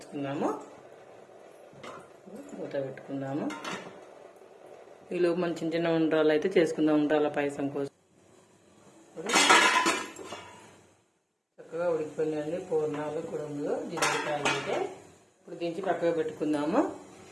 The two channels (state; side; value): identical; both; correlation 1.00